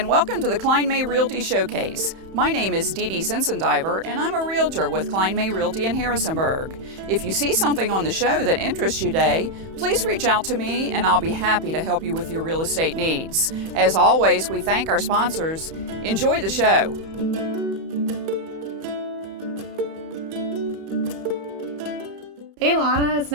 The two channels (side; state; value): left; late; 31 ms